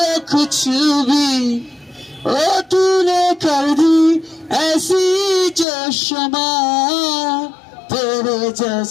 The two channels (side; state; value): right; drops out; at 5.7 s